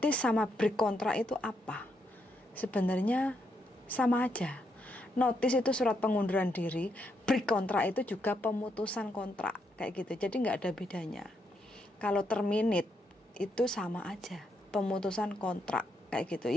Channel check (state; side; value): normal; both; correlation 0.78